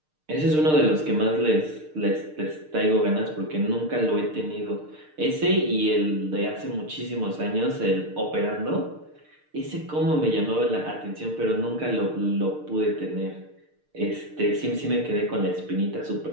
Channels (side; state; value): left; late; 6.6 ms